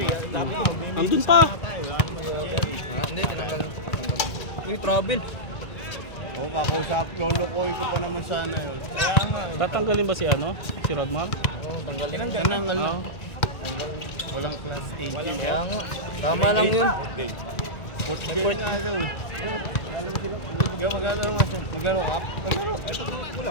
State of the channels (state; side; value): late; right; 1.9 ms